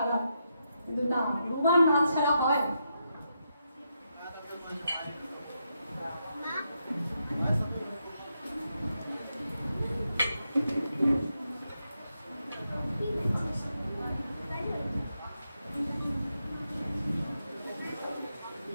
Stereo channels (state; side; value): inverted; both; correlation -0.83